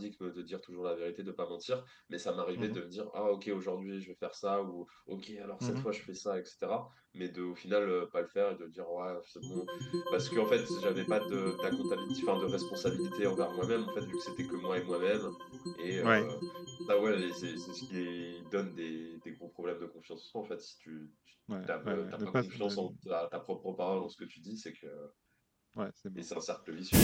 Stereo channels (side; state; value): both; identical; correlation 1.00